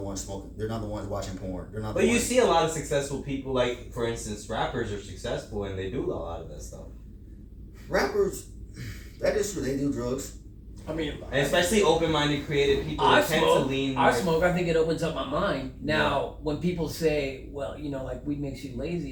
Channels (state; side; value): identical; both; correlation 1.00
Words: ones smoking. They're not the ones watching porn. They're not. But you see a lot of successful people, for instance, rappers are successful and they do a lot of that stuff. Rappers, that is true. They do drugs. And especially open-minded, creative people tend to lean. I smoke. I think it opens up my mind. Now, when people say, "Well, weed makes you lazy,"